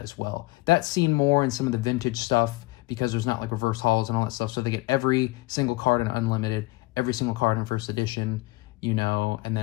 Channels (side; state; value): right; quieter; 21.1 dB